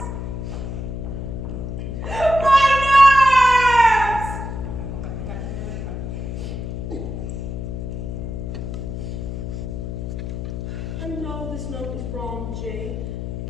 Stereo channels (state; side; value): noise; left; hum, 5 dB below the sound